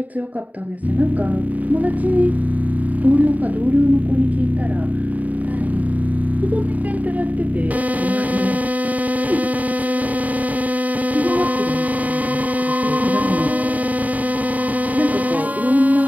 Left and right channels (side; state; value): left; late; 0.074 ms